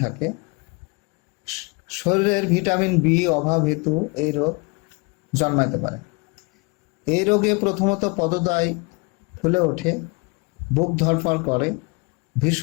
থাকে। শরীরের ভিটামিন বি অভাব হেতু এই রোগ জন্মাতে পারে। এই রোগে প্রথমত পদদ্বয় ফুলে ওঠে, বুক ধড়ফড় করে,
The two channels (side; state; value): right; quieter; 28.7 dB